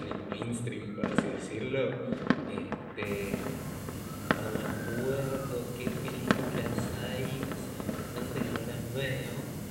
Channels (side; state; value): both; identical; correlation 1.00